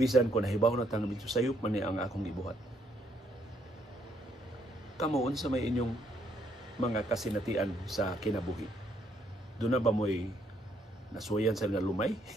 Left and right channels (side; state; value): both; normal; correlation 0.71